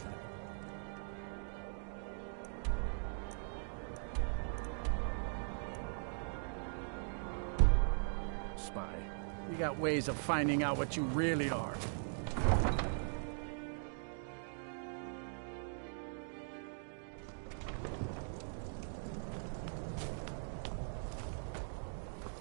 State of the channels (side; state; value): left; silent; digital silence